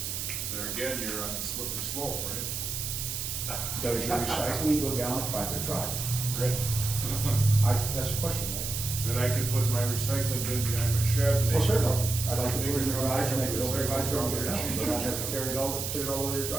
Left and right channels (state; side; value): noise; right; hiss, 4 dB below the sound